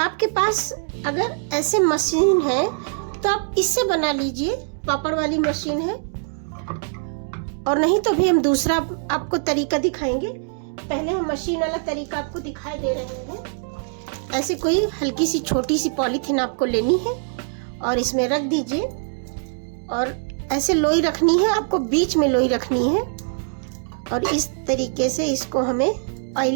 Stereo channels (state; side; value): silent; left; 64 dB below the other